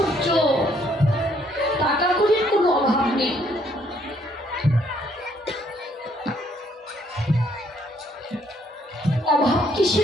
টাকা কড়ির কোনো অভাব নেই, অভাব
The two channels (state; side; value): normal; both; correlation 0.67